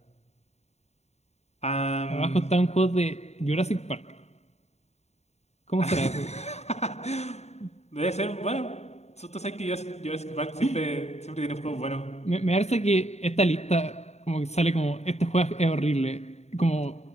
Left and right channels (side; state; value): right; late; 0.32 ms